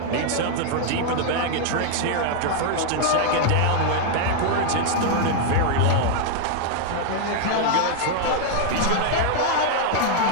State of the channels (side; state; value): both; different; correlation 0.00